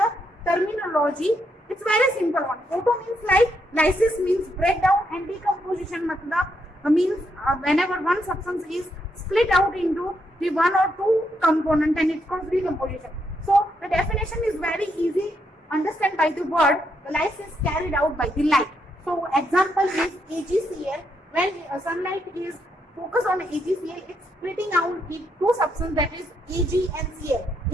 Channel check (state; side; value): normal; both; correlation 0.78